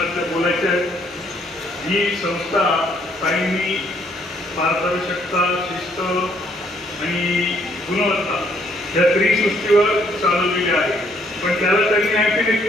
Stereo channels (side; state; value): both; normal; correlation 0.67